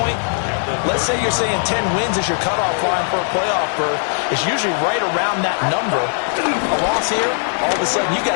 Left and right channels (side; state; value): right; silent; 67 dB below the other